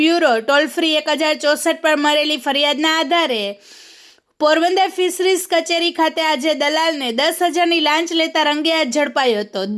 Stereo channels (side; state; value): both; identical; correlation 1.00